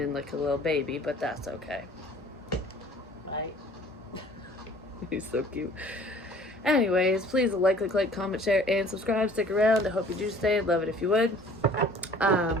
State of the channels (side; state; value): both; normal; correlation 0.51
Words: like a little baby, but that's okay. Right? He's so cute. Anyways, please like, comment, share, and subscribe. Stick around. I hope you do stay. I'd love it if you would.